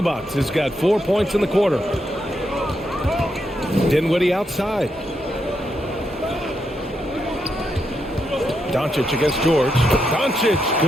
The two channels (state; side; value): normal; both; correlation 0.82